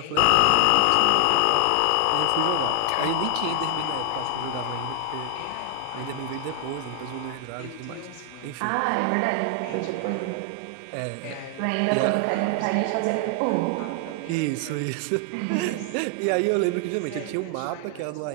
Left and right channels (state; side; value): different; both; correlation 0.00